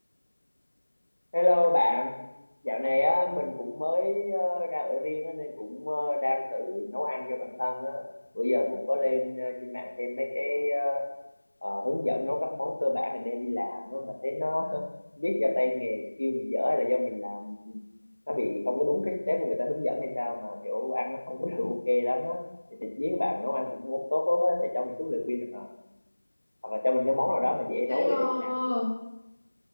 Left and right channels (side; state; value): both; inverted; correlation -1.00